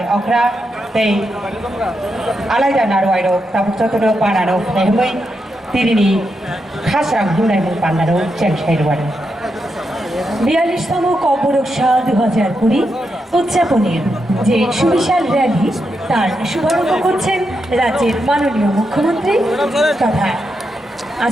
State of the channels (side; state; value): both; normal; correlation 0.84